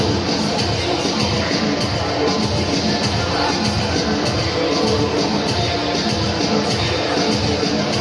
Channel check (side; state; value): both; identical; correlation 1.00